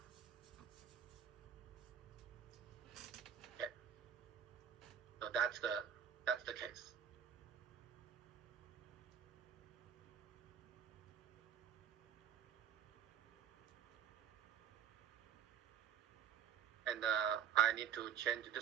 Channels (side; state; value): left; quieter; 8.6 dB